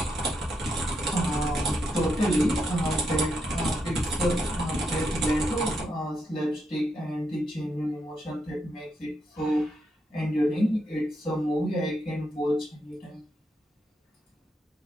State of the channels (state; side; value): normal; both; correlation 0.81